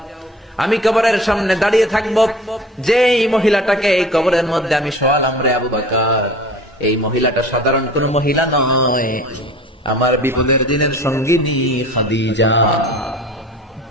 আমি কবরের সামনে দাঁড়িয়ে থাকবো, যেই মহিলাটাকে এই কবরের মধ্যে আমি শোয়ালাম রে আবু বকর, এই মহিলাটা সাধারণ কোন মহিলা নয়, আমার বিপদের দিনের সঙ্গিনী খাদিজা।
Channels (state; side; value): normal; both; correlation 0.43